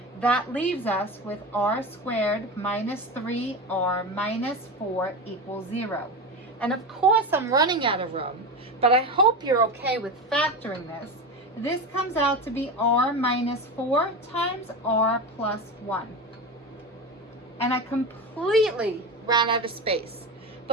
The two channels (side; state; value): both; normal; correlation 0.23